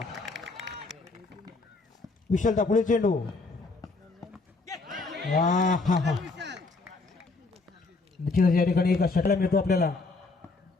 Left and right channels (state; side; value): quieter; right; 3.7 dB